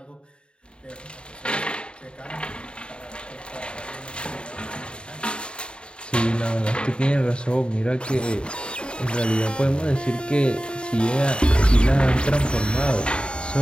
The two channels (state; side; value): late; right; 0.053 ms